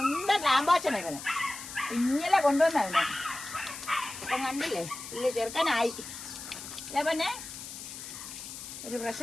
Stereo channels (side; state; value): left; noise; hiss, 11 dB below the sound